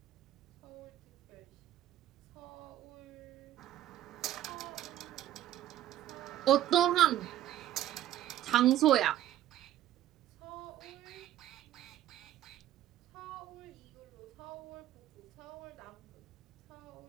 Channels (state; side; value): quieter; left; 12.7 dB